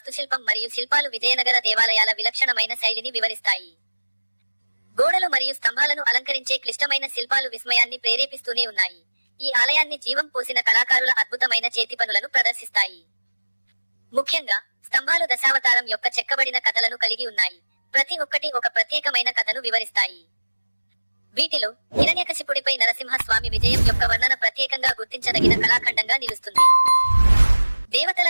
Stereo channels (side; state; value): both; inverted; correlation -1.00